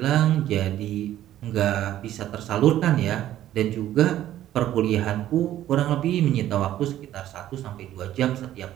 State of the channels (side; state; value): left; quieter; 12.7 dB